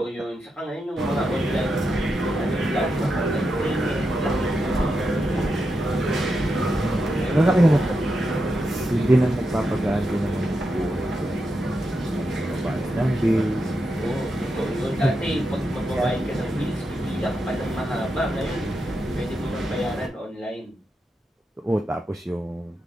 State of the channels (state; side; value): normal; both; correlation 0.86